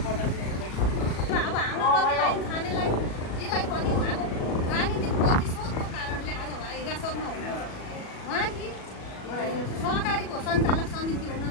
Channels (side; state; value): right; late; 37 ms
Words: बताइदिनुहुन्छ। अब हाम्रो छानेलाई यसलाई पनि उहाँको राजनीतिक प्रतिशोधको कारणले आज उहाँ हिरासतमा हुनुहुन्छ। उहाँकी सहकारीको सञ्चालक समिति हुन